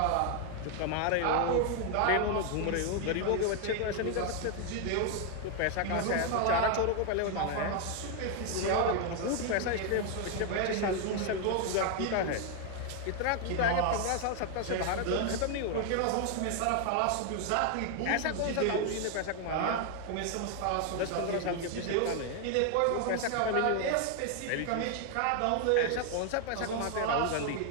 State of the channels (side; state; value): both; different; correlation 0.00